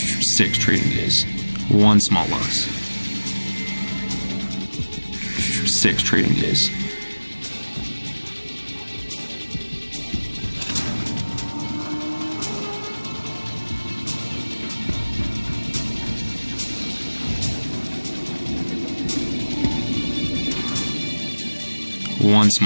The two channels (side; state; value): both; inverted; correlation -1.00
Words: 6 trading days. 1 small loss. 6 trading days. One